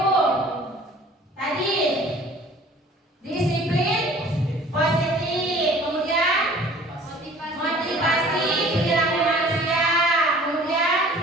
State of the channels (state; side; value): normal; both; correlation 0.49